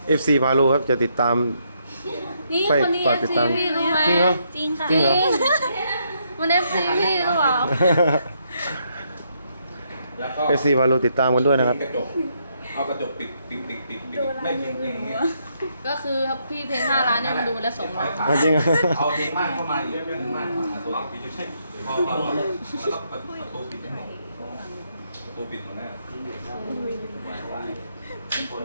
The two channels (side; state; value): both; inverted; correlation -0.75